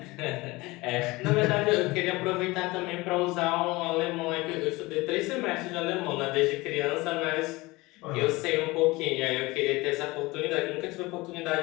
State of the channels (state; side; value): quieter; right; 21.9 dB